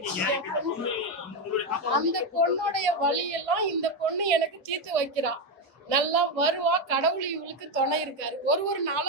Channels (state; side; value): normal; both; correlation 0.09